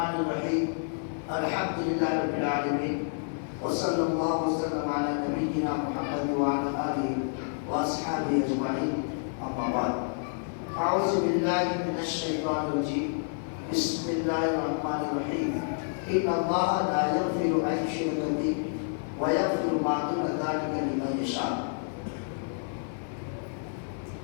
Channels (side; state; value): right; silent; 56 dB below the other